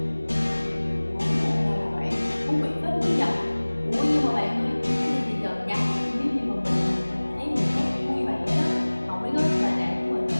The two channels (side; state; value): both; inverted; correlation -1.00